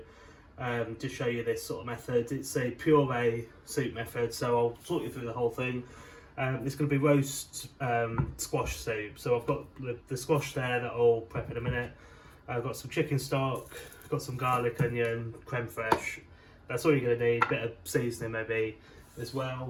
to show you this sort of method. It's a puree soup method, so I'll talk you through the whole thing. It's going to be roast squash soup. So I've got the squash there that I'll prep in a minute. I've got some chicken stock, got some garlic, onion, creme fraiche. That's all you're going to need. A bit of seasoning maybe as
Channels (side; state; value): both; identical; correlation 1.00